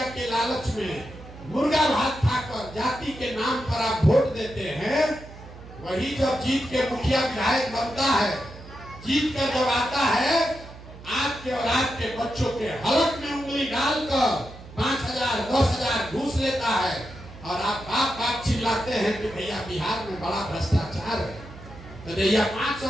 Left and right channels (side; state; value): right; noise; hum, 17 dB below the sound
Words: के लालच में मुर्गा भात खाकर जाति के नाम पर आप वोट देते हैं, वही जब जीत के मुखिया विधायक बनता है, जीत कर जब आता है, आपके और आपके बच्चों के हलक में उंगली डालकर 5000-10,000 घूस लेता है और आप बाप बाप चिल्लाते हैं कि भैया बिहार में बड़ा भ्रष्टाचार है। तो भैया